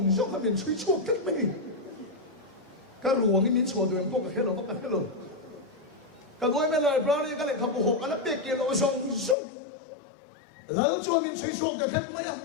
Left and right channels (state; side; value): drops out; right; at 9.3 s